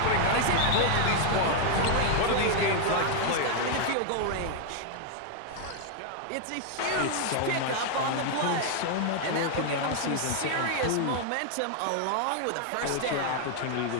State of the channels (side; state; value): both; different; correlation 0.00